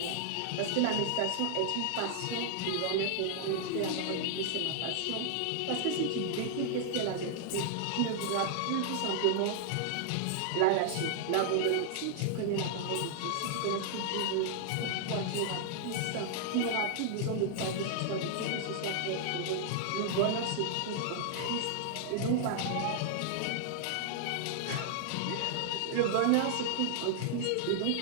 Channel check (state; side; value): different; both; correlation -0.01